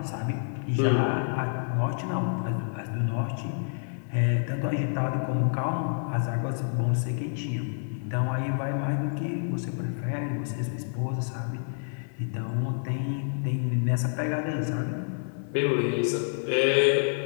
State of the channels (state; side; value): silent; right; 58 dB below the other